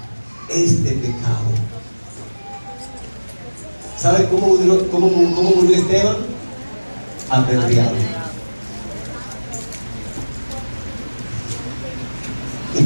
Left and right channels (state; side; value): inverted; both; correlation -1.00